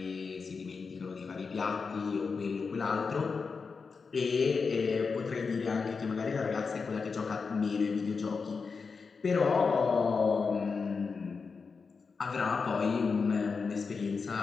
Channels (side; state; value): right; quieter; 5.0 dB